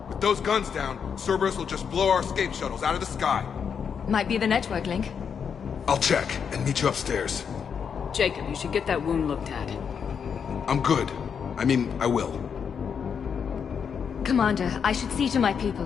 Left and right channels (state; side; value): quieter; right; 6.9 dB